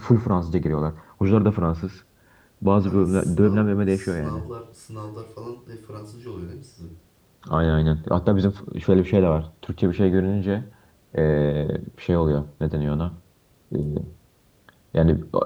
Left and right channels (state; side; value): identical; both; correlation 1.00